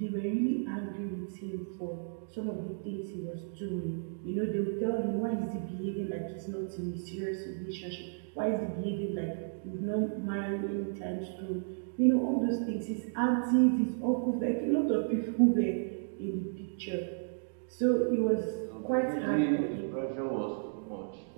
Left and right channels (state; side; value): silent; left; digital silence